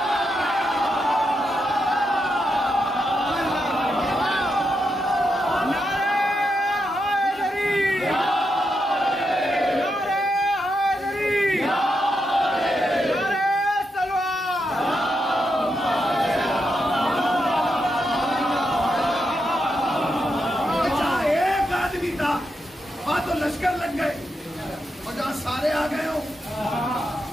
तो लश्कर लग गए और जहां सारे आ गए हो,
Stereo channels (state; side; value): normal; both; correlation 0.84